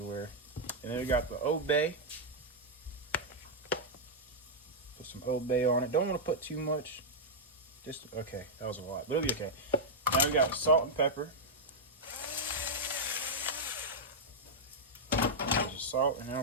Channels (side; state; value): both; normal; correlation -0.05